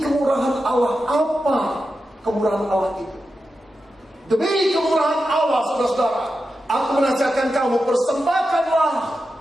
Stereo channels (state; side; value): normal; both; correlation 0.90